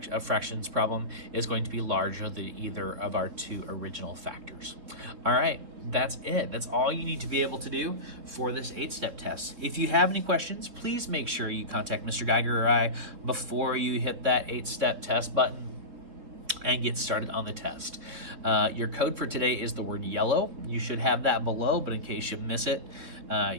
of fractions problem is going to be larger than either of our two original factors. All right, that's it. That's all you need to be able to do for this 8-step test. If you have any questions, please make sure you contact Mr. Geiger or I before you hit that 8-step test button and get started on the test. Your code for today is the word yellow. You should have that below, but in case you miss it,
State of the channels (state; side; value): late; left; 3.6 ms